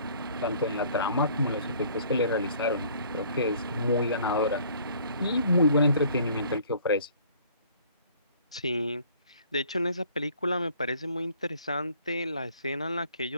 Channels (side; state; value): both; inverted; correlation -0.56